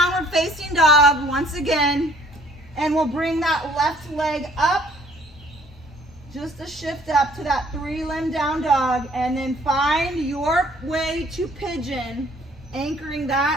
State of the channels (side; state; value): both; normal; correlation 0.59